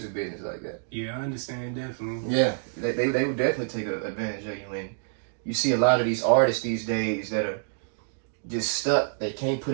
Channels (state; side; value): silent; left; digital silence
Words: business like that. Yeah, I understand, definitely. Yeah, they would definitely take advantage of you. And you see a lot of these artists these days that are just stuck. They can't put